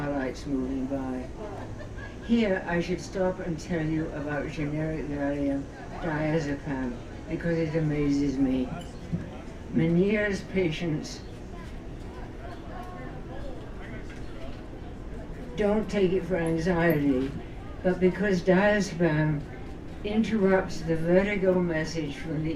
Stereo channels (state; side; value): identical; both; correlation 1.00